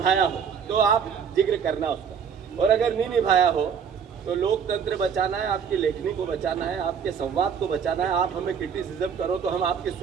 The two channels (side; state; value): left; quieter; 7.1 dB